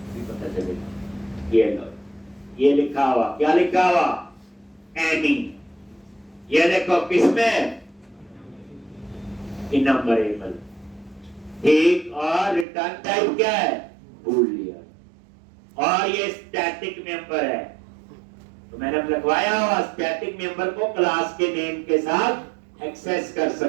पता चलेगा। ये लो, ये लिखा हुआ, क्या लिखा हुआ? एनी। ये देखो किसमें? इनम्बरेबल। ठीक, और रिटर्न टाइप क्या है? बूलियन। और ये स्टैटिक मेंबर है, तो मैंने लिखवाया हुआ स्टैटिक मेंबर को क्लास के नेम के साथ एक्सेस कर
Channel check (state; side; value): drops out; left; at 12.7 s